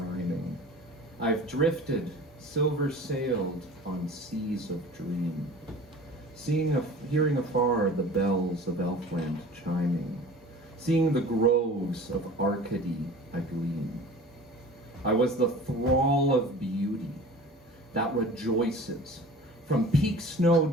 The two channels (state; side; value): normal; both; correlation 0.42